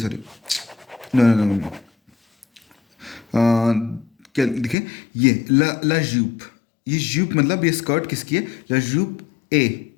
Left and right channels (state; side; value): drops out; right; at 4.8 s